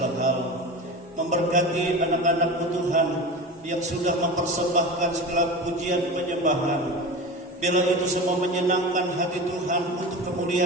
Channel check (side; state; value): both; normal; correlation 0.29